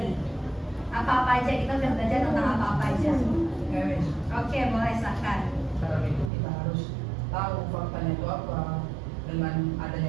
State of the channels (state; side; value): drops out; left; at 6.3 s